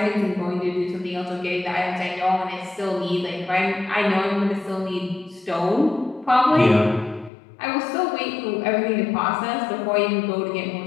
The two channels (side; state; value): right; drops out; at 7.3 s